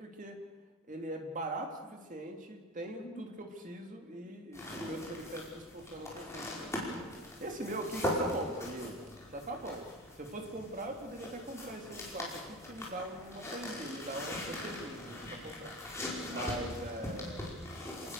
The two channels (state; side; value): normal; both; correlation 0.31